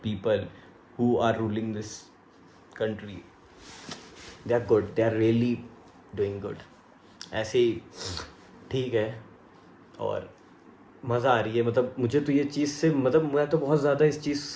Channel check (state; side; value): identical; both; correlation 1.00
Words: people who are ruling this country, they are good, they are really doing good. ऐसे ही ठीक है। और मज़ा आ रही है, मतलब मुझे तो ये चीज़ से, मतलब मैं तो बहुत ज़्यादा इस चीज़